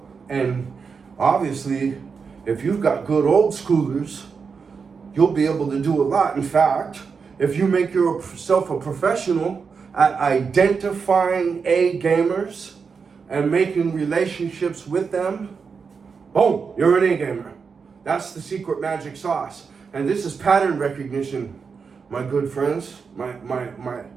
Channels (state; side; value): quieter; left; 5.5 dB